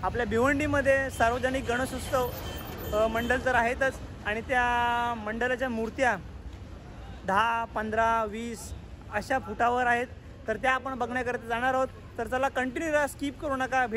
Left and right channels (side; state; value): both; identical; correlation 1.00